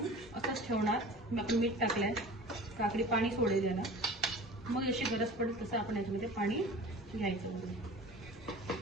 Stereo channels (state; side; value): normal; both; correlation 0.40